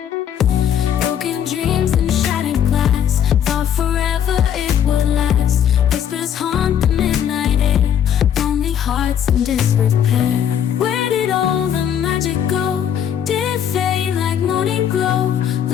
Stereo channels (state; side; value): quieter; right; 9.2 dB